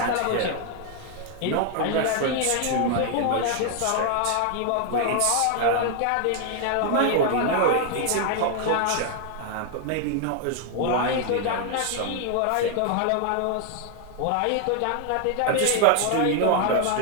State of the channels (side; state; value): both; different; correlation 0.00